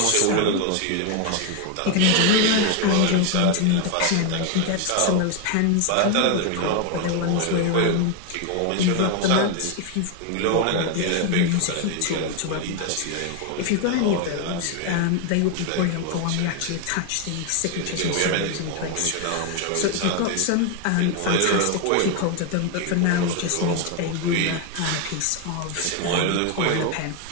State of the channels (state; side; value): different; both; correlation 0.01